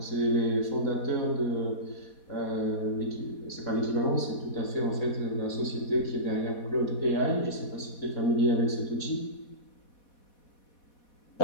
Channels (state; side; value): late; right; 4.2 ms